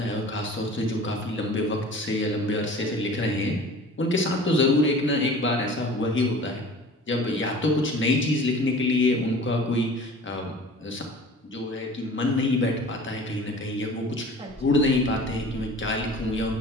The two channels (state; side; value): normal; both; correlation 0.43